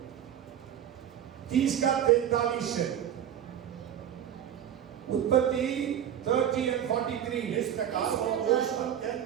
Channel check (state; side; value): quieter; left; 10.0 dB